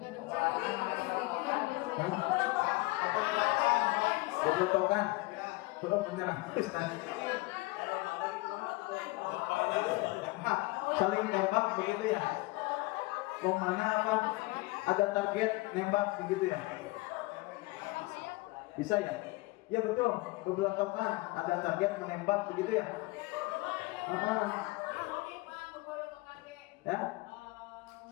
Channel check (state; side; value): quieter; right; 22.6 dB